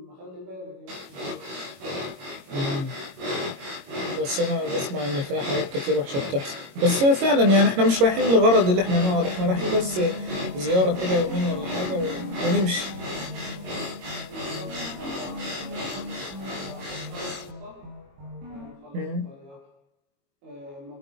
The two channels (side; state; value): left; late; 22 ms